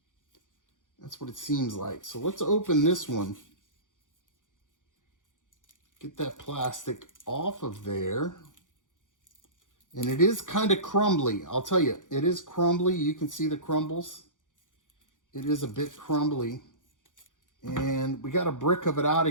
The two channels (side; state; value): right; late; 0.87 ms